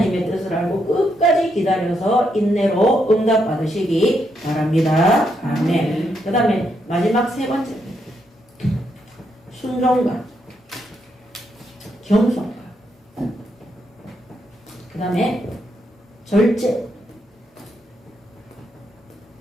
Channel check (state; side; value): normal; both; correlation 0.79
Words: 뜻을 알고 끝까지 기다려서 인내로 응답받으시기 바랍니다. 아멘. 그 다음에 마지막 세 번째입니다. 순종과 겸손과 그 다음에 절제.